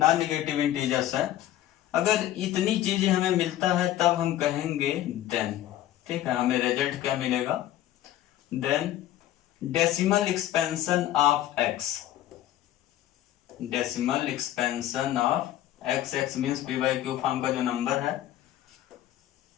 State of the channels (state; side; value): quieter; right; 13.2 dB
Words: negative integers है। अगर इतनी चीजें हमें मिलता है तब हम कहेंगे देन, ठीक है, हमें रिजल्ट क्या मिलेगा, then decimal expansion of x, decimal expansion of x, x means P by Q form का जो नंबर है